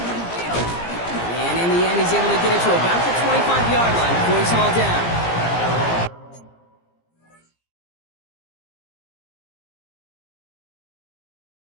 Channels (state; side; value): late; right; 17 ms